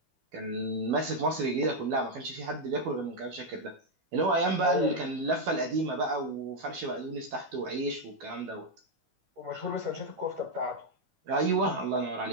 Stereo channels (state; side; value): late; left; 12 ms